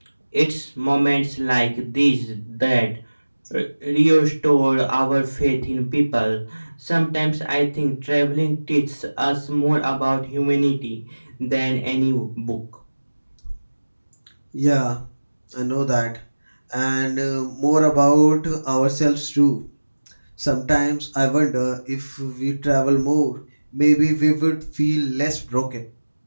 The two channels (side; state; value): both; inverted; correlation -1.00